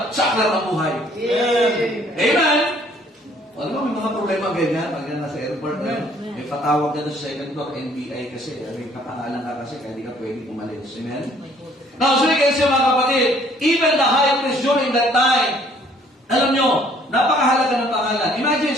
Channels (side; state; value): both; normal; correlation 0.60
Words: sa aklat ng buhay. Amen! Alam mo, may mga problema ganyan, pag yan nasa airport, may patawag ka na sa second floor, NBI kasi, may kapangalan ka kasi, kaya di ka pwede umalis. Amen? Now, so kasi mga kapatid, even the high priest during that time, alam nyo, napakahalaga ng pangalan. Imagine